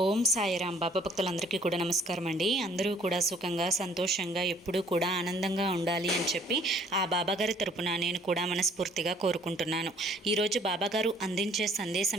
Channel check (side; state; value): both; normal; correlation 0.58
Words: ఓం సాయిరాం. బాబా భక్తులందరికీ కూడా నమస్కారం అండి. అందరూ కూడా సుఖంగా సంతోషంగా ఎప్పుడూ కూడా ఆనందంగా ఉండాలి అని చెప్పి ఆ బాబాగారి తరపున నేను కూడా మనస్ఫూర్తిగా కోరుకుంటున్నాను. ఈరోజు బాబాగారు అందించే